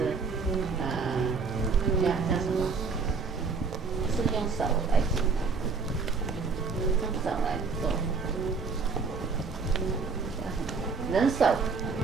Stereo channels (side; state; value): left; quieter; 4.8 dB